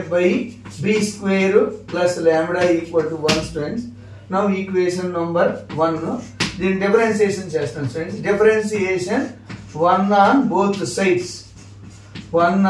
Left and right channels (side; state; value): both; identical; correlation 1.00